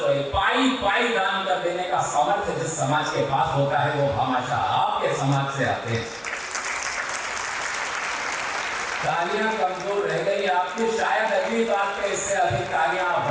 पाई पाई दान कर देने का सामर्थ्य जिस समाज के पास होता है वो हमेशा आपके समाज से आते हैं। तालियां कमजोर रह गई आपकी, शायद अगली बात पे इससे अधिक तालियां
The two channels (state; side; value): identical; both; correlation 1.00